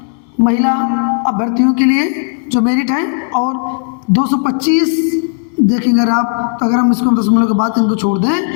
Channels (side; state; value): right; silent; 55 dB below the other